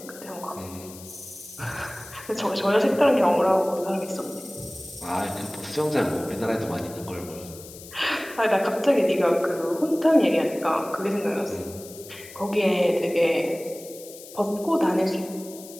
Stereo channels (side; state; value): left; noise; hiss, 17 dB below the sound